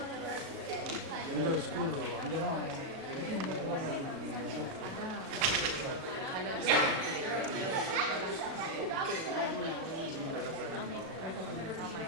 உங்கள் ஸ்கூல் அங்கே தான்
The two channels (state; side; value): late; left; 37 ms